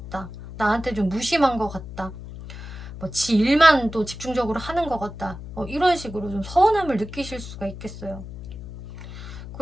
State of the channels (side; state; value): left; noise; hum, 12 dB below the sound